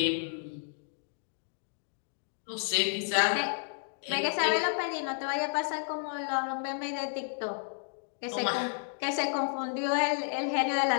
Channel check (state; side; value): silent; right; digital silence